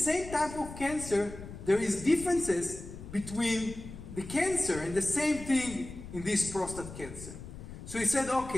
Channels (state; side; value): noise; left; rumble, 12 dB below the sound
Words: type of cancer, there is differences between the cancer, and the same thing in this prostate cancer. So he said,